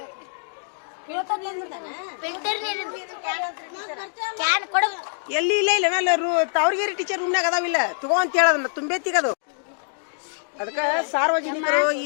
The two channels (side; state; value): right; silent; digital silence